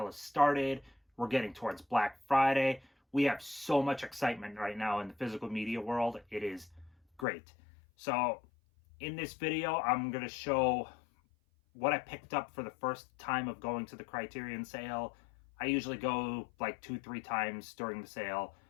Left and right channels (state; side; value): drops out; right; at 7.2 s